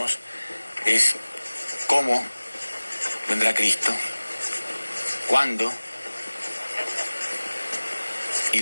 es: ¿cómo vendrá Cristo? ¿Cuándo? ¿Y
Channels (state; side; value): inverted; both; correlation -1.00